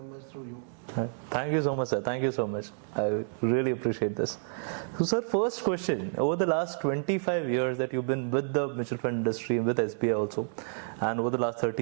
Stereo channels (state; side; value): silent; left; digital silence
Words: through you. Thank you so much, sir. Thank you so much. I really appreciate this. So, sir, first question. Over the last 25 years that you've been with the mutual fund industry, with SBI also, and over the last 30